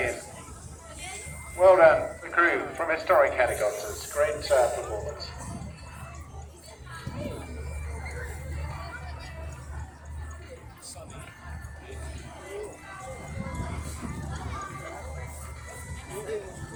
Well done, the crew from Historic Helicopters. Great performance.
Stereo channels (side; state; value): both; identical; correlation 1.00